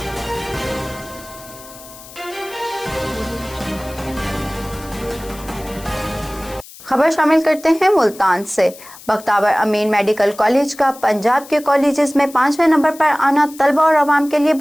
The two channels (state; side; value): noise; left; hiss, 19 dB below the sound